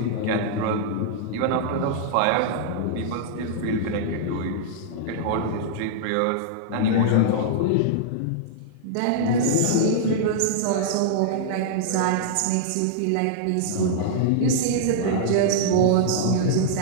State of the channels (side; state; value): both; different; correlation -0.01